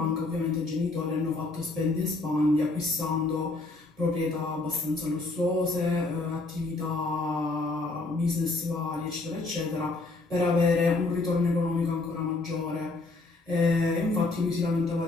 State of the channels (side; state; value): right; quieter; 3.3 dB